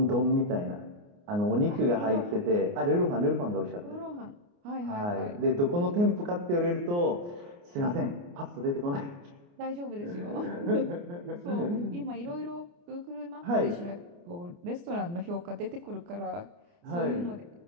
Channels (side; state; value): left; late; 29 ms